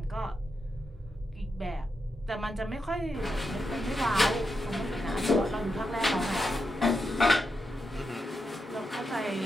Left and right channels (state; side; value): normal; both; correlation 0.85